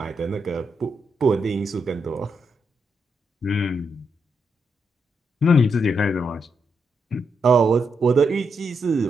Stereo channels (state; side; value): normal; both; correlation 0.81